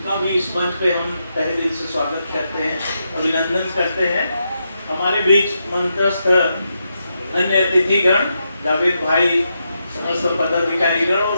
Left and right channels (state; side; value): inverted; both; correlation -0.84